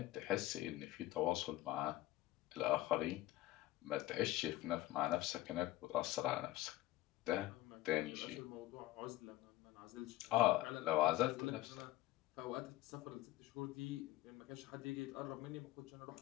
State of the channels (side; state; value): right; quieter; 16.4 dB